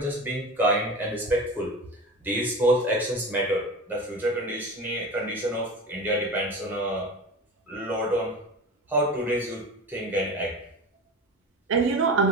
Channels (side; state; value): both; normal; correlation 0.30